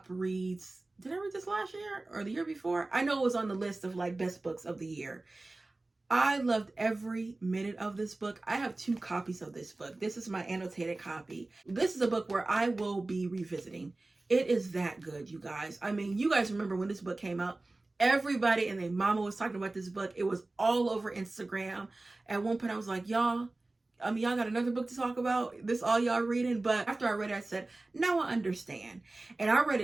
reads. Did I read this last year or the year before? I know it was on the list of like best books of the year. I loved every minute of this book. I have 2 copies of this book. This is my annotated copy. This is a book where I will be revisiting. It is that good, you guys. I mean, you guys remember when this book came out, everybody and their mama was talking about this book. It was all over Instagram. At one point I was like, y'all got another book to talk about? This all y'all reading? But after I read it, I said, now I understand. And I read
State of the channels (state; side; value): quieter; left; 3.0 dB